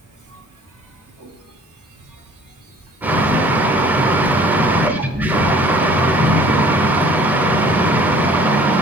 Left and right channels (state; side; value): normal; both; correlation 0.53